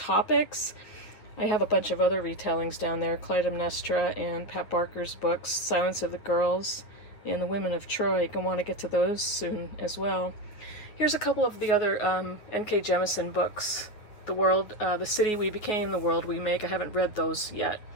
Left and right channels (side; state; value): right; late; 9.6 ms